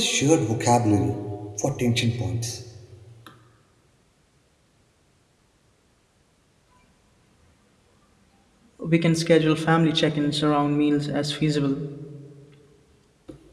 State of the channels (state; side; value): identical; both; correlation 1.00